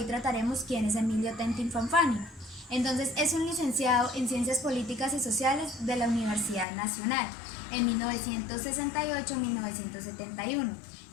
trataremos quién es Emilio Tentin Fanfani. Entonces, es un licenciado en Ciencias Políticas y Sociales de la Universidad Nacional en 1968-1971.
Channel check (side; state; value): right; drops out; at 6.7 s